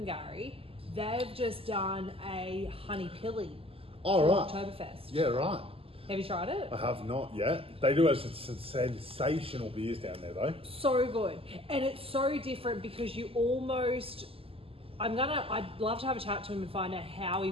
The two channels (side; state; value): left; late; 0.27 ms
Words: they've just done a honey pilly for Oktoberfest. Yeah, right. Have you tried it? I have not yet. They do have some sensational beers down there though. So good. And it's so different because you almost, I'd love to have a chat to him and find out how he